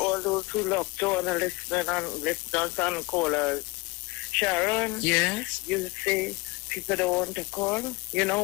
those who love to all the listeners and callers. Sharon. Yes? You say people don't want to call. You know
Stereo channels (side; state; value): right; quieter; 24.1 dB